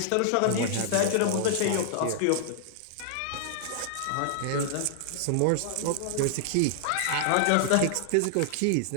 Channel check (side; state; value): both; different; correlation -0.01